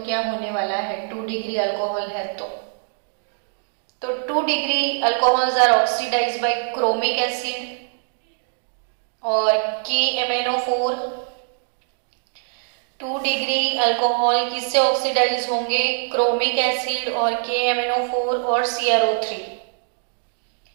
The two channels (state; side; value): silent; left; 64 dB below the other